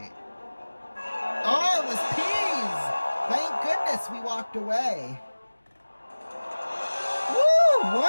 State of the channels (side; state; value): both; inverted; correlation -1.00